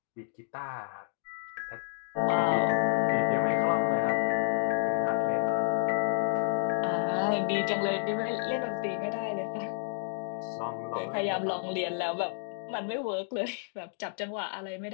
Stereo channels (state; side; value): silent; right; digital silence